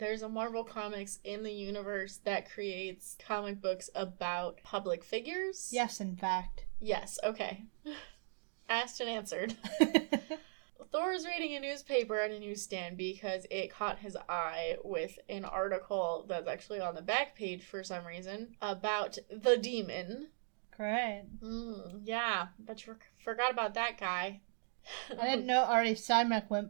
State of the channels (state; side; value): silent; left; digital silence